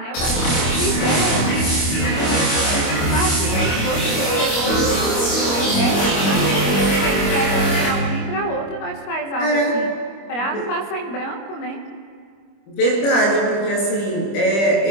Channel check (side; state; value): right; late; 25 ms